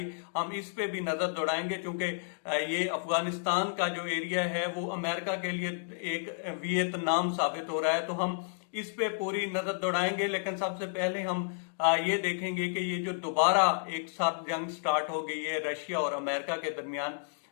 हम इस पे भी नजर दौड़ाएंगे क्योंकि ये अफगानिस्तान का जो एरिया है वो अमेरिका के लिए एक वियतनाम साबित हो रहा है, तो हम इस पे पूरी नजर दौड़ाएंगे। लेकिन सबसे पहले हम ये देखेंगे कि ये जो दोबारा एक साथ जंग स्टार्ट हो गई है रशिया और अमेरिका के दरमियान,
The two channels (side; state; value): right; silent; digital silence